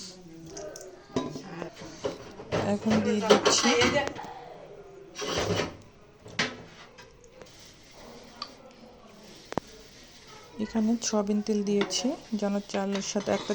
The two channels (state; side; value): identical; both; correlation 1.00